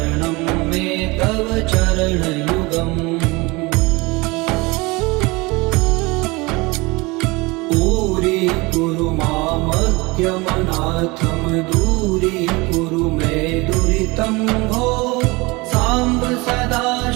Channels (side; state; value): left; quieter; 24.3 dB